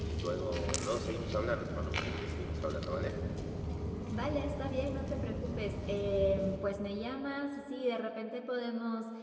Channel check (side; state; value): both; identical; correlation 1.00